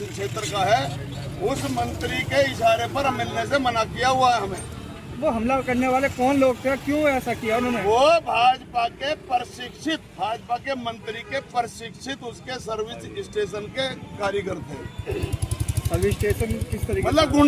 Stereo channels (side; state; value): both; identical; correlation 1.00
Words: का है उस मंत्री के इशारे पर मिलने से मना किया हुआ है हमें। वो हमला करने वाले कौन लोग थे, क्यों ऐसा किया उन्होंने? वो भाजपा के प्रशिक्षित, भाजपा के मंत्री के प्रशिक्षित उसके सर्विस स्टेशन के कारीगर थे। सर्विस स्टेशन किस तरीके? मतलब